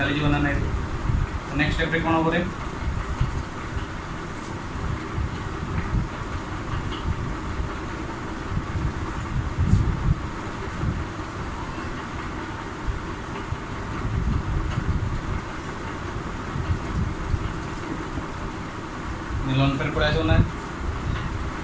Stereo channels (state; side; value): identical; both; correlation 1.00